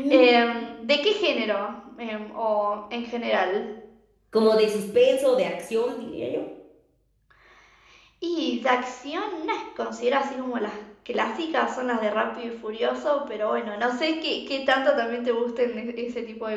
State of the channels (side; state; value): both; identical; correlation 1.00